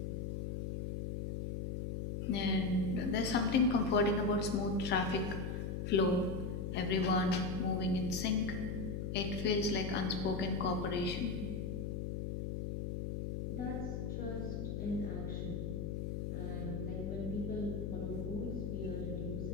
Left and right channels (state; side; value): noise; left; hum, 3 dB below the sound